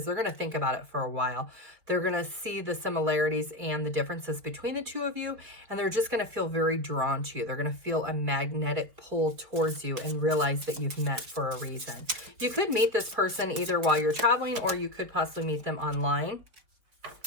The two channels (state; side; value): late; left; 4.5 ms